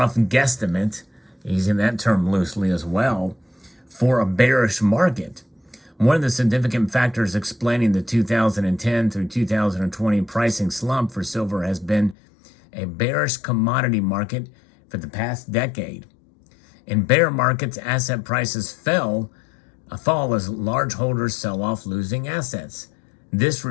guesstimate, using that term loosely as well, for a bearish market. One of the significant factors explaining the 2010 through 2020 pricing slump for silver has been a bearish commodity market for the past decade. In bear markets, asset prices fall as large holders sell off losing assets. This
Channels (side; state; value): right; drops out; at 12.2 s